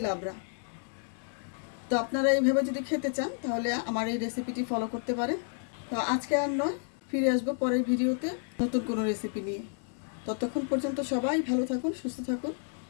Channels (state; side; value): silent; right; 57 dB below the other